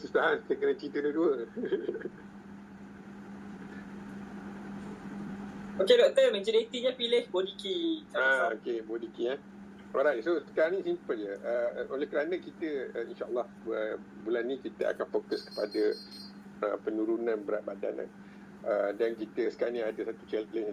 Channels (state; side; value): identical; both; correlation 1.00